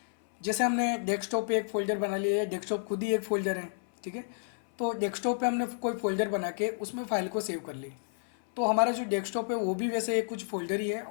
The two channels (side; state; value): right; silent; 57 dB below the other